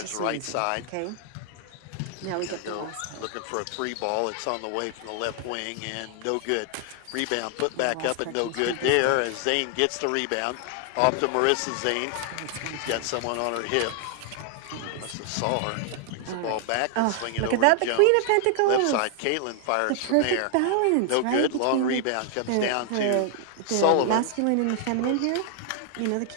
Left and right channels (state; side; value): different; both; correlation 0.00